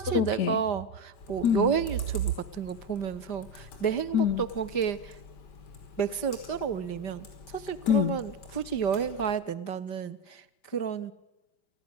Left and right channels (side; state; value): right; late; 5.1 ms